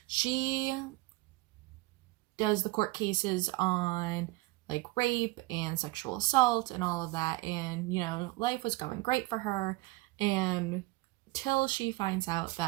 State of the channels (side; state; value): left; quieter; 21.1 dB